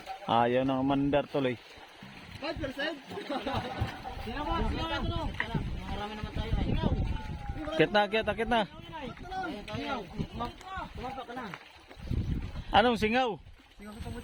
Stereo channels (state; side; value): identical; both; correlation 1.00